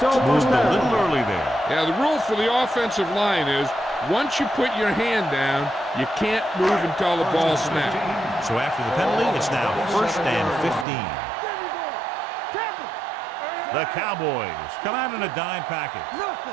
moved a little early there. Yeah, the rule for the offensive line is once you put your hand down, you can't move until the ball snaps. So after the penalty, it's now 1st and 15. The Cowboys come out in a dime package.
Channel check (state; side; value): drops out; left; at 10.9 s